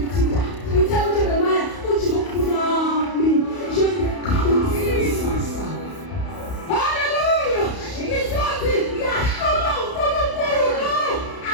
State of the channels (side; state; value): right; late; 31 ms